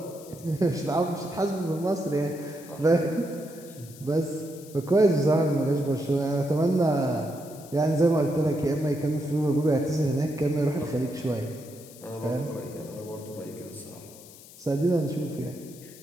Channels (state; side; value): noise; left; hiss, 20 dB below the sound